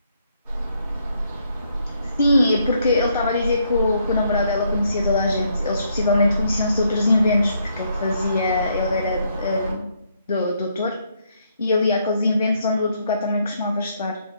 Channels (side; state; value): both; inverted; correlation -0.73